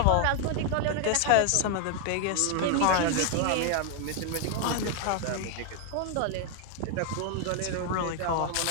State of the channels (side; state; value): both; different; correlation 0.00